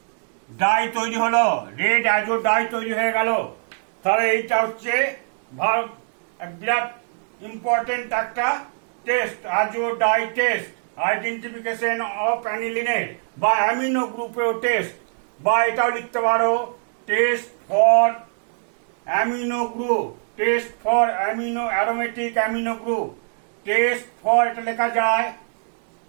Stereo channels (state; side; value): silent; left; digital silence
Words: তৈরি হলো, রেড অ্যাজোডাই তৈরি হয়ে গেল। তাহলে এইটা হচ্ছে বিরাট ইম্পর্টেন্ট একটা টেস্ট, অ্যাজোডাই টেস্ট, আইডেন্টিফিকেশন অফ অ্যানিলিনের বা অ্যামিনো গ্রুপেও টেস্ট, বা এটাও লিখতে পারো test for amino group, test for aromatic amino group, test for, এটা লেখা যায়